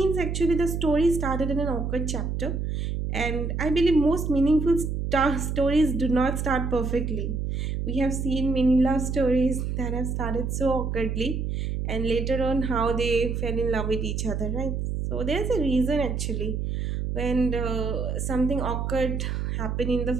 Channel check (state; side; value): noise; right; hum, 2 dB below the sound